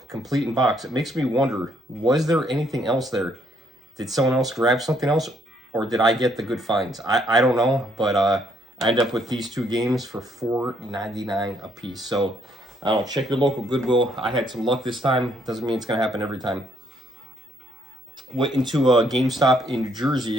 complete in box. It makes me wonder, was there anything else there? Did someone else grab something else? Or did I get the good finds? I don't know, but I ended up with these two games for $4.99 a piece. So, I don't know, check your local Goodwill. I had some luck this time. Doesn't mean it's going to happen every time. Went into a GameStop in New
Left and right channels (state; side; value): normal; both; correlation 0.69